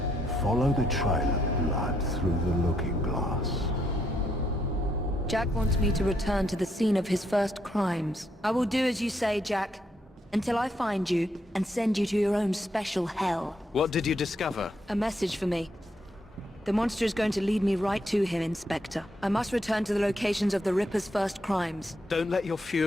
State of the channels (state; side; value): normal; both; correlation 0.76